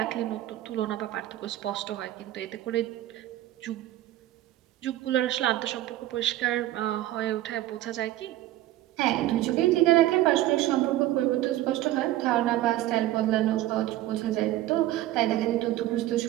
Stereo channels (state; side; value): quieter; left; 14.8 dB